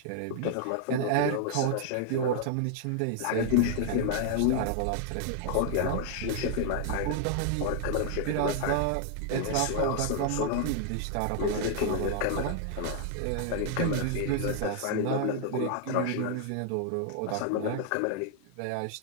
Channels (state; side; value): different; both; correlation 0.00